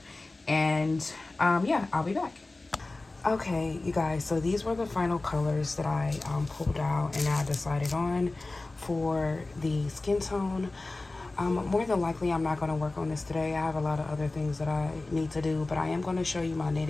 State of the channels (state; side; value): quieter; right; 3.1 dB